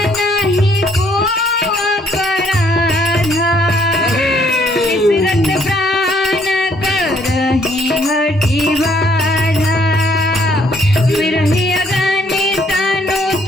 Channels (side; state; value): both; normal; correlation 0.66